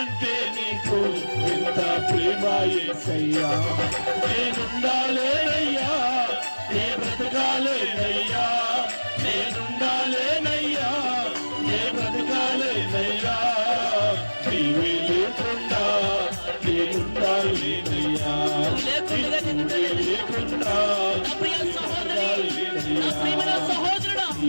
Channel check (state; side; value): inverted; both; correlation -1.00